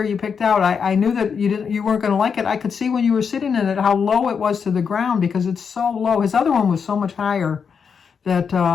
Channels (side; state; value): right; quieter; 6.3 dB